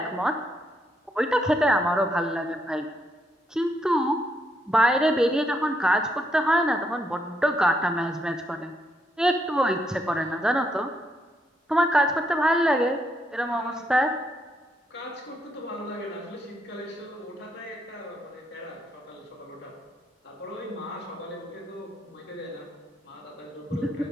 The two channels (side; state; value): both; normal; correlation 0.76